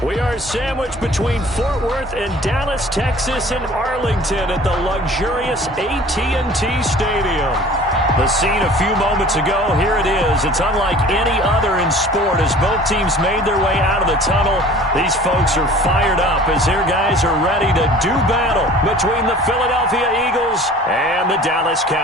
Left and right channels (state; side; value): normal; both; correlation 0.46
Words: We are sandwiched between Fort Worth and Dallas, Texas, and Arlington at the luxurious AT&T Stadium. The scene a few moments ago, here it is. It's unlike any other in sport as both teams made their way out of the tunnel. These folks are fired up as their guys are ready to do battle between the Philadelphia Eagles and the Dallas